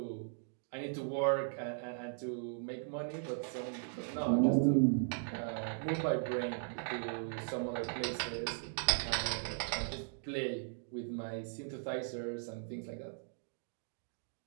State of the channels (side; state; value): left; silent; digital silence